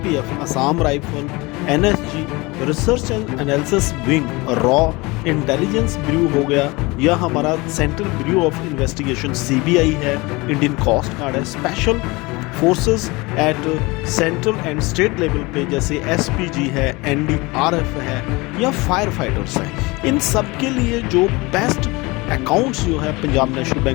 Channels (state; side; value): quieter; right; 24.0 dB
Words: Assam rifle, NSG, Research and Analysis Wing, रॉ, इंटेलिजेंस ब्यूरो हो गया, या हमारा Central Bureau of Investigation CBI है, Indian Coast Guard है, special forces at central and state level पे जैसे SPG है, NDRF है, या फायर फाइटर्स है। इन सब के लिए जो बेस्ट अकाउंट्स जो है पंजाब नेशनल